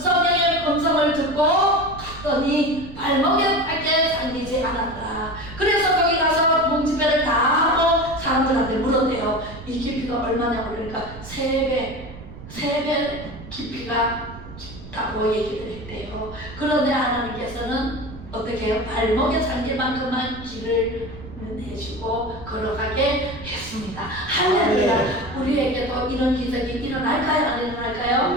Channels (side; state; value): right; noise; rumble, 15 dB below the sound